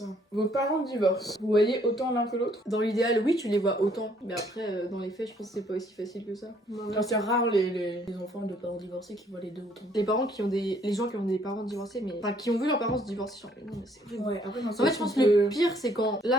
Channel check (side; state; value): both; normal; correlation 0.64